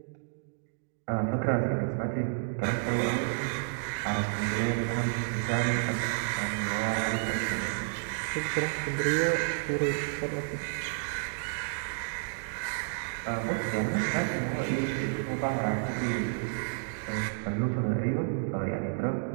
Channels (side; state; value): left; silent; digital silence